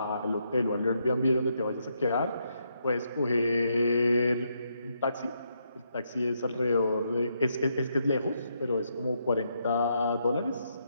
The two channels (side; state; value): both; inverted; correlation -0.78